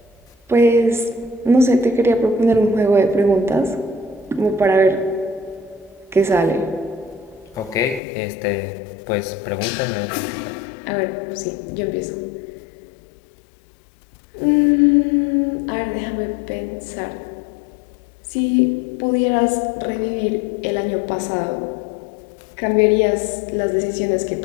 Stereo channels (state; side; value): drops out; right; at 8.0 s